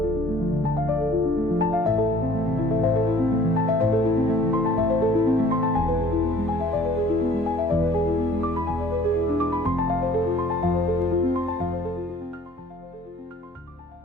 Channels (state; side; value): normal; both; correlation 0.54